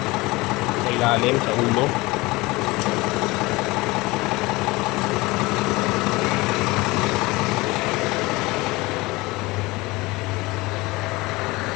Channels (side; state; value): right; quieter; 22.2 dB